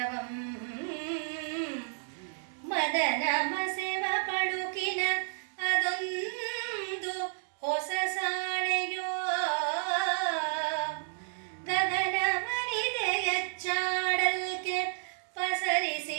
ಮದನ ಮಸೆವ ಪಡುಕಿನ ಅದೊಂದು ಹೊಸ ಸಾಣೆಯೋ, ಗಗನವನಿದೆಯಚ್ಚಾಡಲ್ಕೆ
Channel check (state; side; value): silent; left; digital silence